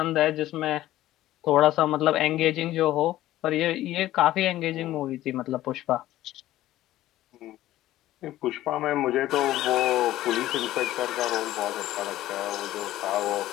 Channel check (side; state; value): right; quieter; 14.7 dB